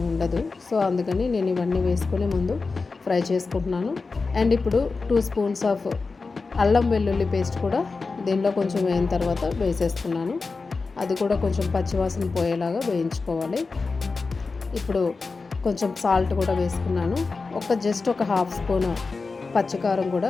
ఉండదు. సో అందుకని నేను ఇవన్నీ వేసుకొని ముందు ఫ్రై చేసుకుంటున్నాను. అండ్ ఇప్పుడు 2 స్పూన్స్ ఆఫ్ అల్లం వెల్లుల్లి పేస్ట్ కూడా దీనిలో కొంచెం వేయిన తర్వాత వేసేస్తున్నాను. అది కూడా కొంచెం పచ్చివాసన పోయేలాగా వేయించుకోవాలి. ఇప్పుడు కొంచెం సాల్ట్ కూడా వేసుకున్నాను. జస్ట్ ఒక 1/2 స్పూన్ పచ్చికారం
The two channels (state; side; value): quieter; right; 4.1 dB